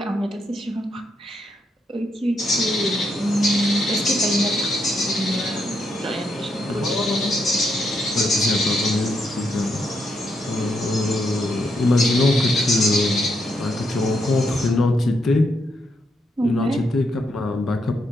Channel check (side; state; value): both; normal; correlation 0.79